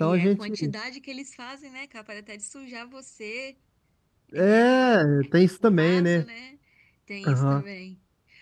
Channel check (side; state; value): both; identical; correlation 1.00